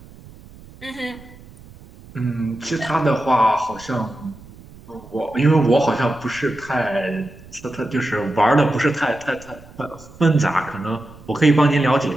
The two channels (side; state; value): right; noise; rumble, 21 dB below the sound